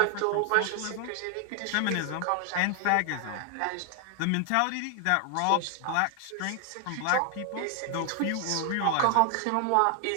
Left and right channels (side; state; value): both; different; correlation 0.00